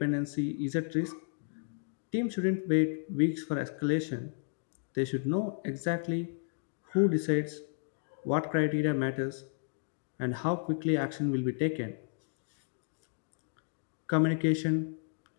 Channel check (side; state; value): right; silent; digital silence